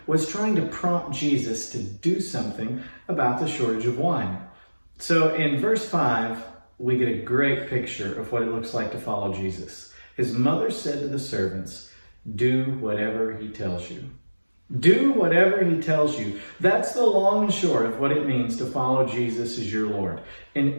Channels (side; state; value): both; inverted; correlation -1.00